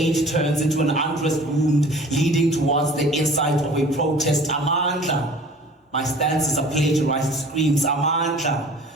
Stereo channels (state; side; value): normal; both; correlation 0.47